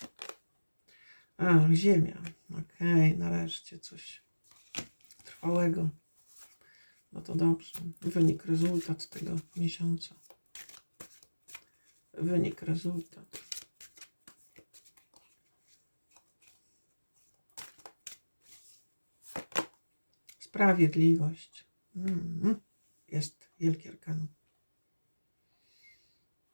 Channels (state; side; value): inverted; both; correlation -1.00